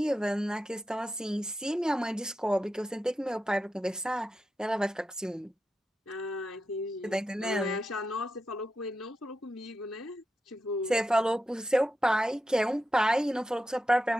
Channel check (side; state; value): both; normal; correlation 0.88